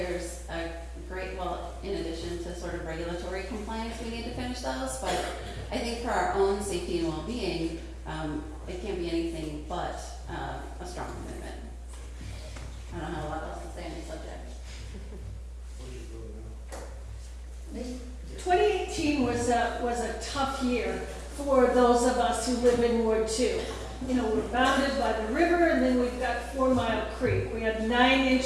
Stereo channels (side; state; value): both; identical; correlation 1.00